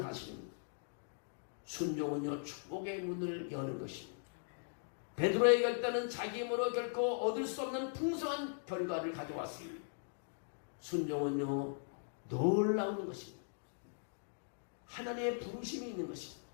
사실입니다. 순종은요, 축복의 문을 여는 것입니다. 베드로의 결단은 자기 힘으로 결코 얻을 수 없는 풍성한 결과를 가져왔습니다. 순종은요, 놀라운 것입니다. 하나님의 부르심이 있는 것입니다.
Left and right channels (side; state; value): right; silent; digital silence